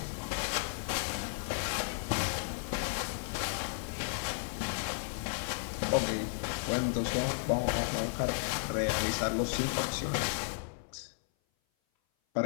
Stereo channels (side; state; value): right; silent; 55 dB below the other